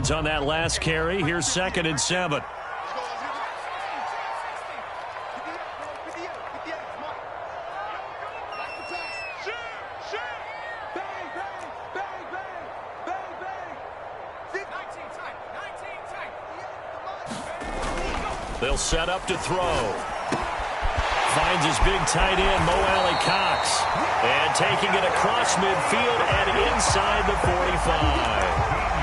on that last carry. Here's 2nd and 7. They'll set up to throw. Finds his big tight end, Mo Alley Cox. And taking it across midfield and inside the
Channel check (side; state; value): both; identical; correlation 1.00